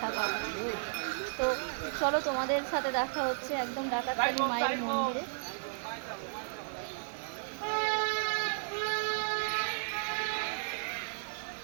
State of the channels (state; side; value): silent; left; digital silence